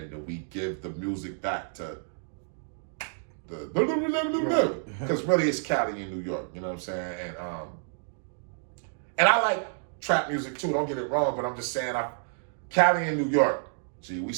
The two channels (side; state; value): left; silent; digital silence